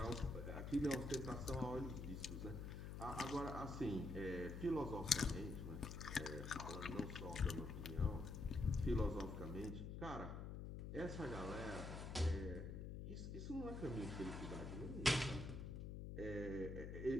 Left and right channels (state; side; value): noise; left; hum, 6 dB below the sound